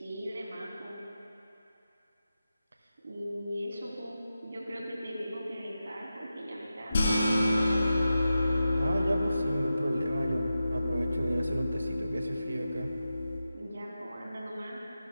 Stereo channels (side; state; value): both; inverted; correlation -0.91